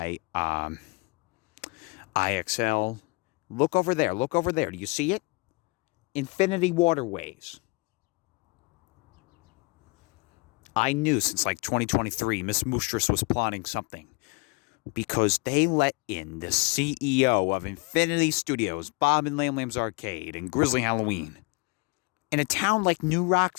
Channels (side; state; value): right; quieter; 28.6 dB